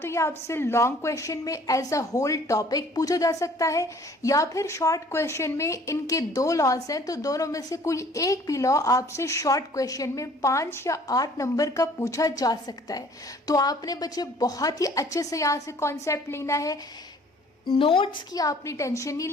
ये आपसे लॉन्ग क्वेश्चन में एज अ होल टॉपिक पूछा जा सकता है या फिर शॉर्ट क्वेश्चन में इनके दो लॉज हैं तो दोनों में से कोई एक भी लॉ आपसे शॉर्ट क्वेश्चन में 5 या 8 नंबर का पूछा जा सकता है। तो आपने बच्चे बहुत ही अच्छे से यहाँ से कॉन्सेप्ट लेना है। नोट्स की आपने टेंशन नहीं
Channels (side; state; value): both; normal; correlation 0.54